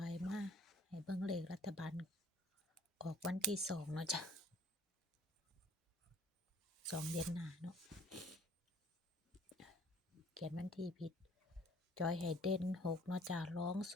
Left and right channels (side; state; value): both; normal; correlation 0.56